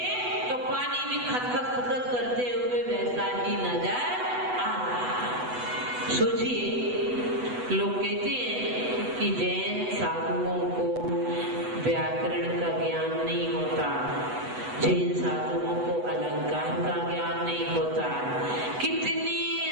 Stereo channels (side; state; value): left; late; 8.1 ms